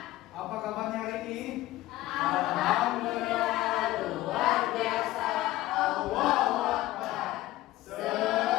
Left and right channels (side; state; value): right; quieter; 16.5 dB